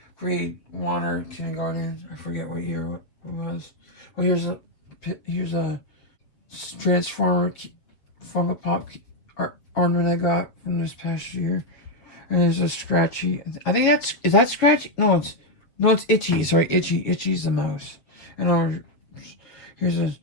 grade 1 or kindergarten. I forget what year it was. Well, here's a Transformer Funko Pop ornament I got from this past year, and there's a Scratchy. I think is that Scratchy? No, it's Itchy. Sorry, Itchy. Itchy's the mouse. And here's a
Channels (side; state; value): right; late; 7.5 ms